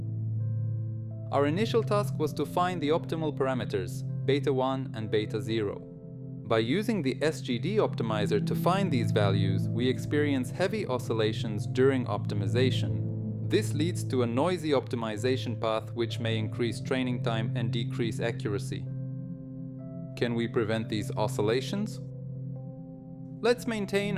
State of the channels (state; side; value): identical; both; correlation 1.00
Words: Our initial task was to find the optimal parameters, beta 1 and beta 0. By using the SGD optimizer to find these values, we experience heavy oscillations during optimization. This leads to a noisy optimization path which may increase training time and decrease accuracy. Can we prevent these oscillations? Let's maintain